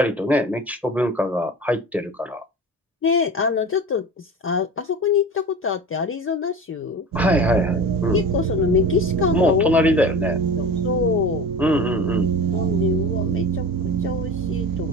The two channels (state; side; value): normal; both; correlation 0.33